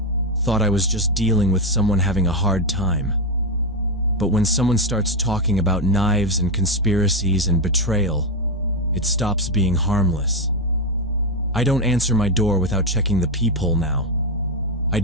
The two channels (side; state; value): both; normal; correlation 0.08